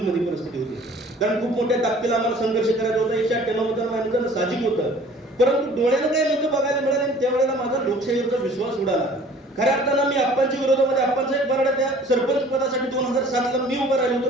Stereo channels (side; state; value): both; normal; correlation 0.50